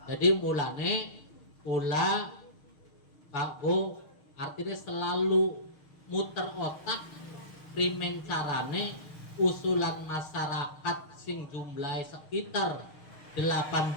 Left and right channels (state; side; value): late; right; 6.5 ms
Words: jadi mulane pula Pak Bu artinya selalu muter otak primen carane usulan masyarakat sing jumlahnya sekitar 18